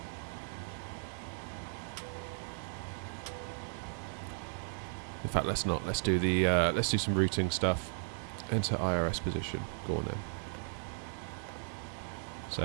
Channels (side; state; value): left; silent; 54 dB below the other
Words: In fact, let's not. Let's do the. Let's do some routing stuff. Enter IRS position. Go on then. So